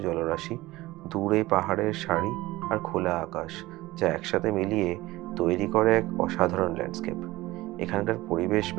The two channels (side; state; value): left; quieter; 18.7 dB